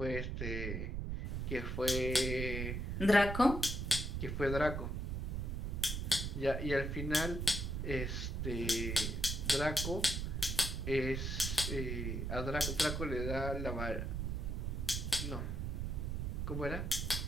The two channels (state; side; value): noise; right; rumble, 2 dB below the sound